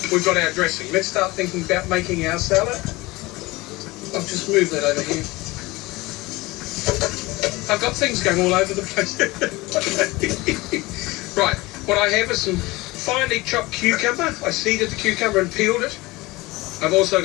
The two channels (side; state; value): right; quieter; 21.4 dB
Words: we've got our dressing. Let's start thinking about making our salad. I'll just move that over here. I've got things going all over the place. Right, what I have is some finely chopped cucumber. I seeded the cucumber and peeled it. I've also